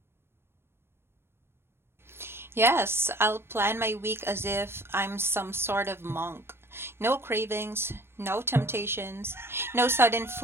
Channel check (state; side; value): late; left; 0.12 ms